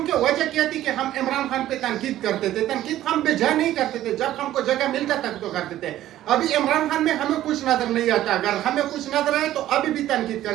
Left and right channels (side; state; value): left; quieter; 13.5 dB